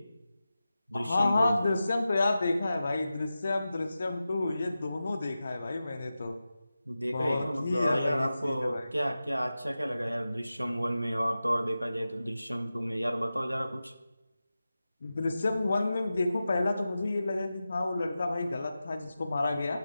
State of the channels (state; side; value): inverted; both; correlation -0.93